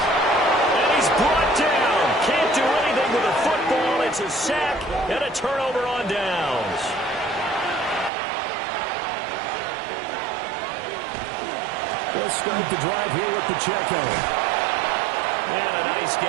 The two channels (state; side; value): drops out; left; at 8.1 s